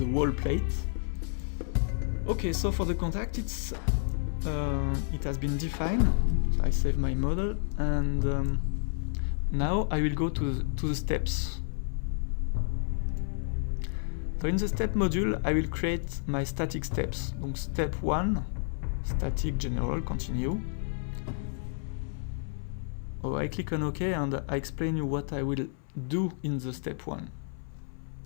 wall plate. Okay, so for the contact, it has been defined. So I save my model, and now I will go to the steps. So in the step module, I will create my static steps. Donc step 1, static general, continue. Oh, I click on OK, and I explain you what I will do in the step 1.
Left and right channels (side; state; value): right; silent; 58 dB below the other